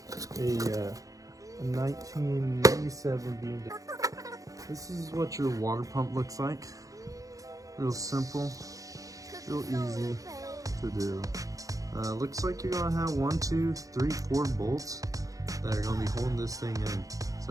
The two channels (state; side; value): late; left; 0.17 ms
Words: a 1997 BMW. This is what your water pump looks like. Real simple, real easy to do. Looks like you're gonna have 1, 2, 3, 4 bolts that are gonna be holding this thing in.